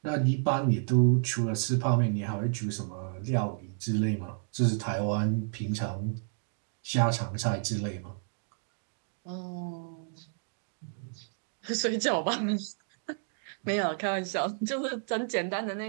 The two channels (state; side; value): silent; left; digital silence